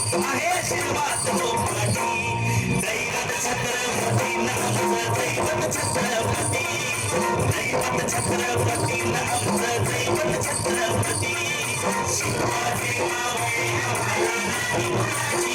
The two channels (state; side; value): identical; both; correlation 1.00